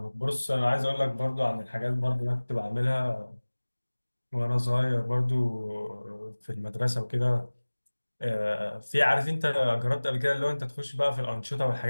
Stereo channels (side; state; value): both; inverted; correlation -1.00